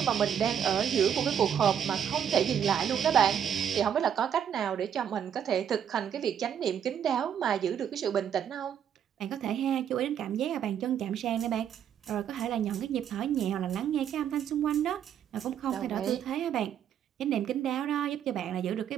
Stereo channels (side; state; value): left; quieter; 8.8 dB